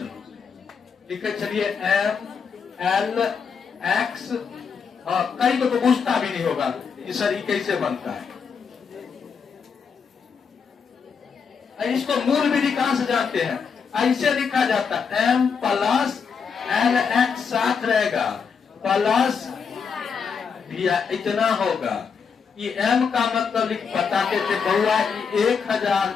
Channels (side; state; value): right; quieter; 6.1 dB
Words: लिखे छलिए एम एल एक्स, कई को तो पूछता भी नहीं होगा कि सर ये कैसे बनता है। इसको मूल विधि कहां से जानते हैं? ऐसे लिखा जाता है एम प्लस एल एक्स साथ रहेगा प्लस भैया इतना होगा। ये एम का मतलब बताते थे बउआ